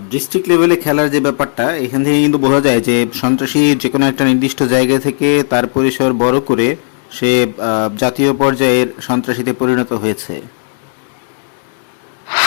ডিস্ট্রিক্ট লেভেলে খেলার যে ব্যাপারটা, এখান থেকে কিন্তু বোঝা যায় যে সন্ত্রাসী যে কোনো একটা নির্দিষ্ট জায়গা থেকে তার পরিসর বড় করে সে জাতীয় পর্যায়ের সন্ত্রাসীতে পরিণত হয়েছে।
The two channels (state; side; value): silent; right; digital silence